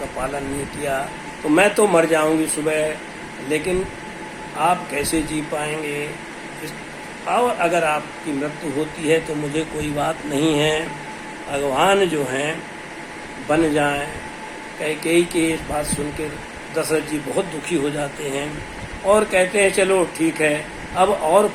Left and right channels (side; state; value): both; identical; correlation 1.00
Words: पालन नहीं किया तो मैं तो मर जाऊंगी सुबह, लेकिन आप कैसे जी पाएंगे? और अगर आपकी मृत्यु होती है तो मुझे कोई बात नहीं है, भगवान जो हैं बन जाएं। कैकेयी की इस बात सुनकर दशरथ जी बहुत दुखी हो जाते हैं और कहते हैं चलो ठीक है, अब और